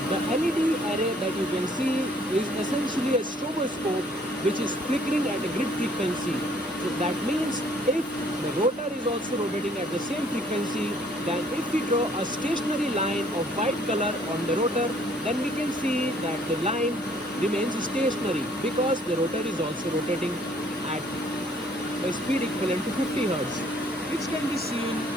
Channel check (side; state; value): both; normal; correlation 0.61